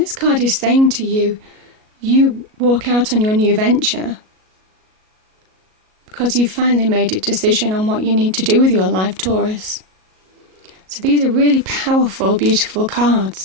card is saying to you, you walk out on your new venture because you've finally made a decision on what you need to do with your life, Taurus. So these are really powerful, beautiful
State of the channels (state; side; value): late; left; 37 ms